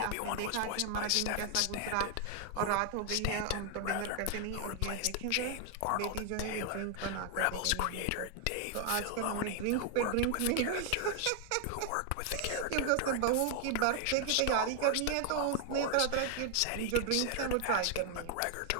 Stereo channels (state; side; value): different; both; correlation 0.00